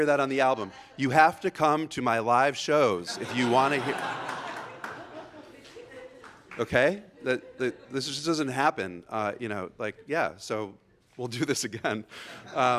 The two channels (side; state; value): both; identical; correlation 1.00